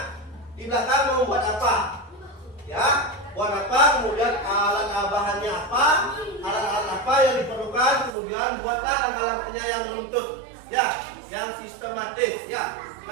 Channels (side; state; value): left; drops out; at 8.1 s